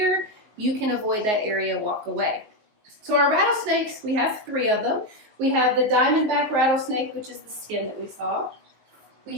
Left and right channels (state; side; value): late; left; 19 ms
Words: You can avoid that area, walk away. So our rattlesnakes, we have 3 of them. We have the diamondback rattlesnake, which is the skin that we saw. We